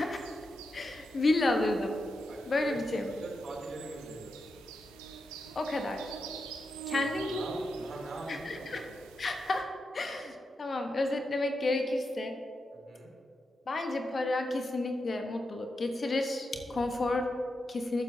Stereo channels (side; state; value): both; normal; correlation 0.87